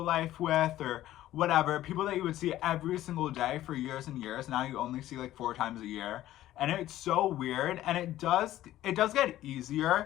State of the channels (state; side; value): quieter; right; 14.0 dB